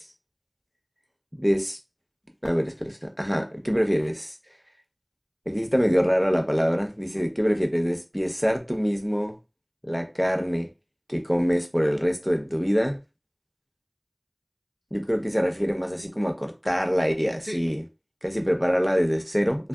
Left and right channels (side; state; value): both; identical; correlation 1.00